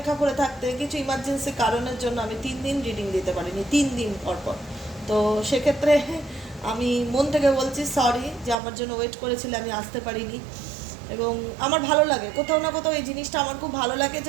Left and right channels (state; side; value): drops out; left; at 8.6 s